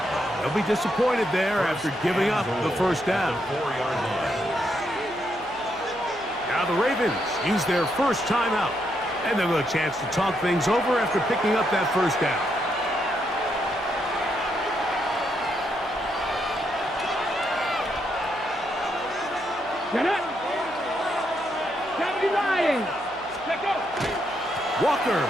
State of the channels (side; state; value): right; noise; hum, 24 dB below the sound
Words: They'll be disappointed there after giving up the first down. Now the Ravens use their first timeout. And they'll have a chance to talk things over after picking up that first down. Get it! Lions! Let go! Walker.